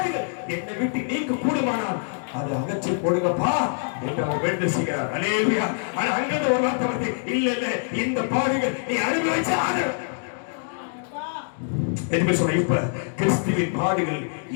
என்னை விட்டு நீங்க கூடுமானால் அது அகற்றி போடுங்கப்பா என்று அவர் வேண்டு செய்கிறார். அல்லேலூயா. ஆனா அங்கிருந்து ஒரு வார்த்தை வந்து, இல்ல இல்ல, இந்த பாடுகள் நீ அனுபவிச்சு ஆகணும். இப்ப கிறிஸ்துவின் பாடுகள்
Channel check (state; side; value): silent; right; 60 dB below the other